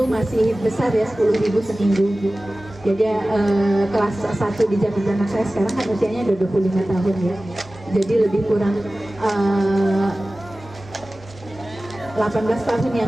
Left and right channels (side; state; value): both; normal; correlation 0.97